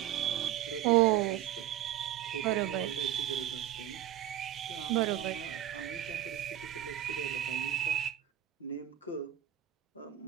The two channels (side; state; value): left; quieter; 12.0 dB